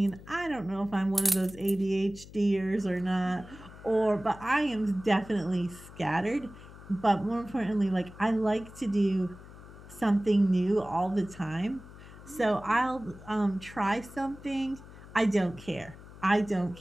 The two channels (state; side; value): noise; left; hum, 18 dB below the sound